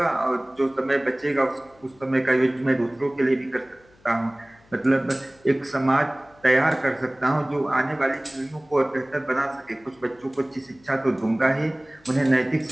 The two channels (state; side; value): noise; left; hum, 30 dB below the sound